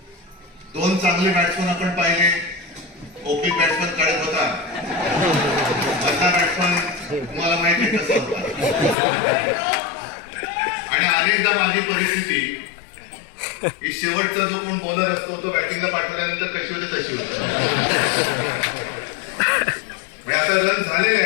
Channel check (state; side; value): drops out; right; at 9.0 s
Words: दोन चांगले बॅट्समन आपण पाहिले. ओपी बॅट्समन काढत होता, मधला बॅट्समन तुम्हाला माहिती आहे कसा होता. आणि अनेकदा माझी परिस्थिती ही शेवटचा जो कोण बॉलर असतो तो बॅटिंगला पाठवल्यानंतर कशी होते तशी होते. आता रन झालेले